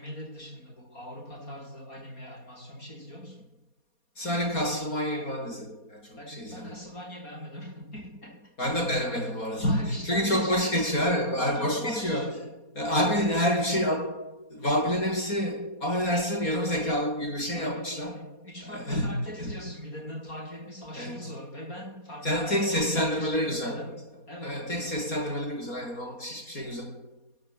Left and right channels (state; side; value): late; right; 4.2 ms